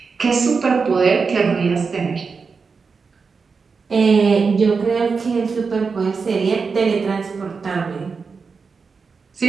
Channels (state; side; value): quieter; left; 5.0 dB